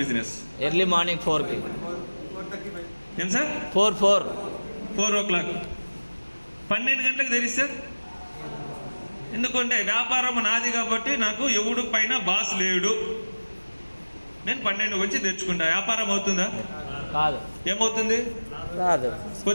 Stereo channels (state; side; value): inverted; both; correlation -1.00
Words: బిజినెస్? ఎర్లీ మార్నింగ్ 4కి. ఏం సార్? 4 o'clock. 12 గంటలకు తెరిస్తే, ఎందుకంటే వ్యాపారం నాది కాబట్టి నాకు ఎవడు పైన బాస్ లేడు, నేను 12 వచ్చి తెచ్చుకుంటా. వ్యాపారం అవుతుందా? కాదు. ఏమవుతుంది? కాదు.